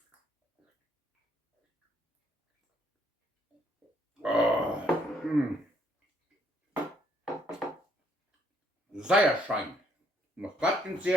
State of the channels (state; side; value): normal; both; correlation 0.68